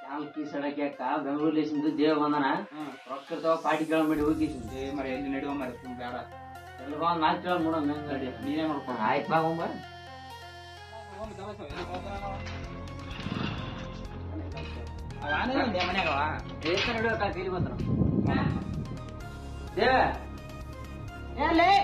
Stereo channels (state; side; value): identical; both; correlation 1.00